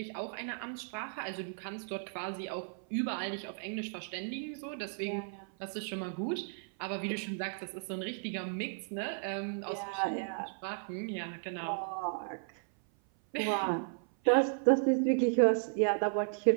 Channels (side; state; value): left; silent; 55 dB below the other